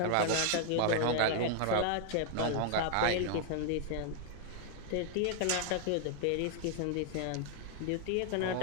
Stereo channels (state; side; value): different; both; correlation 0.00